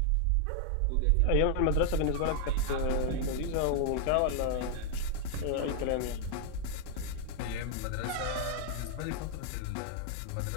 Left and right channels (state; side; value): different; both; correlation -0.01